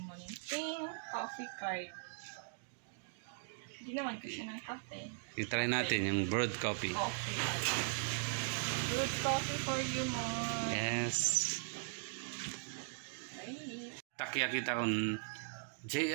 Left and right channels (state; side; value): silent; left; digital silence